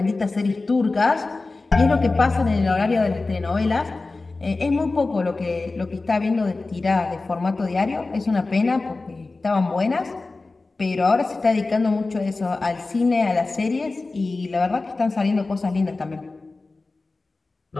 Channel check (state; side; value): quieter; right; 3.5 dB